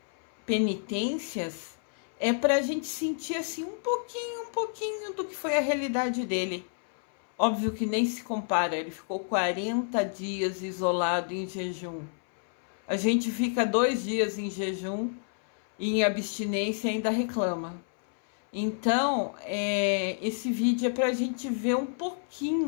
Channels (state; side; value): silent; right; 58 dB below the other